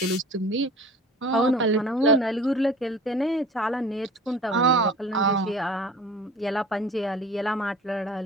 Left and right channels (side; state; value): both; normal; correlation 0.43